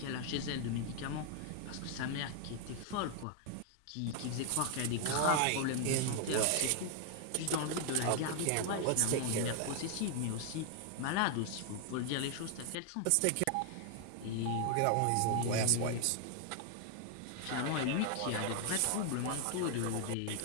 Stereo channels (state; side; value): different; both; correlation 0.00